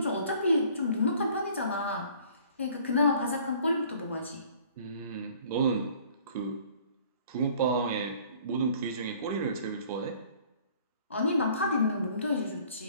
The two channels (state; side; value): inverted; both; correlation -0.54